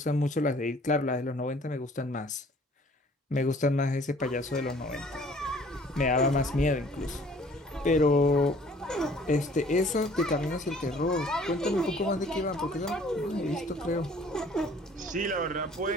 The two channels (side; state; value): both; normal; correlation 0.55